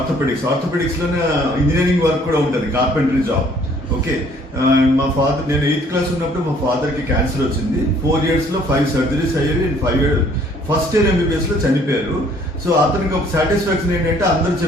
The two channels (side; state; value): both; normal; correlation 0.59